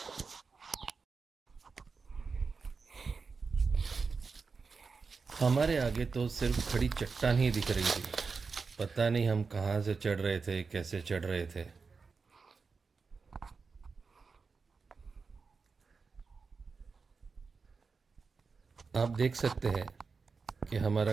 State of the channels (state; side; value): quieter; left; 4.8 dB